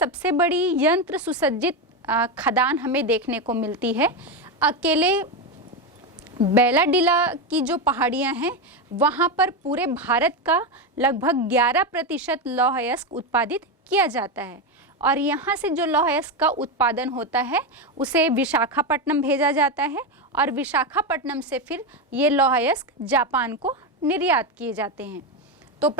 बड़ी यंत्र सुसज्जित खदान हमें देखने को मिलती है। अकेले बैलाडीला की जो पहाड़ियाँ हैं वहाँ पर पूरे भारत का लगभग 11% लौह अयस्क उत्पादित किया जाता है। और यहाँ से जो लौह अयस्क का उत्पादन होता है उसे विशाखापट्टनम भेजा जाता है, और विशाखापट्टनम से फिर ये लौह अयस्क जापान को निर्यात किए जाते हैं। तो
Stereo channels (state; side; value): normal; both; correlation 0.11